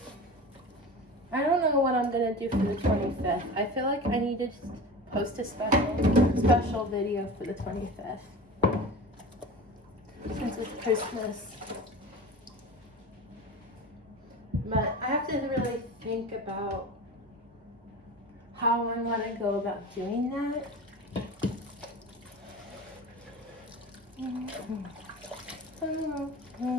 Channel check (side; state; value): both; normal; correlation 0.33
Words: I don't know what I'm gonna do for the 25th. I feel like I need to just post a special video for the 25th. Since it's Christmas. But I have to really think about how I want to go about doing that.